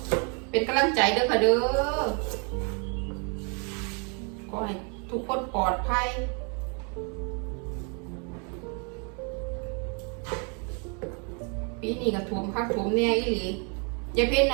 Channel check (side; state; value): left; quieter; 37.0 dB